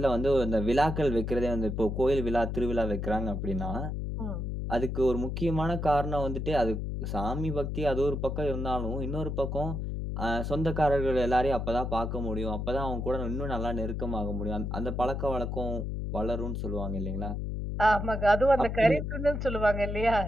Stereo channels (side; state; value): left; noise; hum, 3 dB below the sound